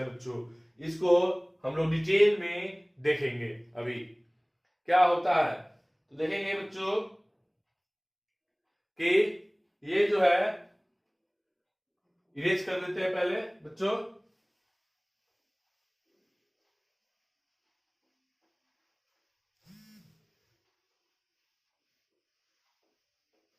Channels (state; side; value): identical; both; correlation 1.00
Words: बच्चों, इसको हम लोग डिटेल में देखेंगे अभी क्या होता है। तो देखेंगे बच्चों कि ये जो है इरेज कर देते हैं पहले बच्चों।